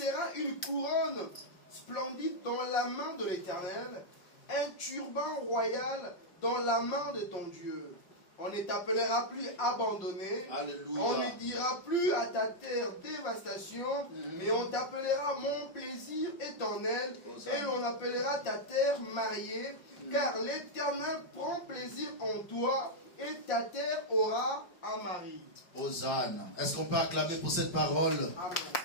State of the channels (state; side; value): late; right; 5.7 ms